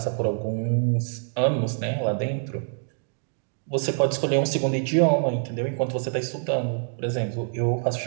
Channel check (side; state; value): left; silent; 61 dB below the other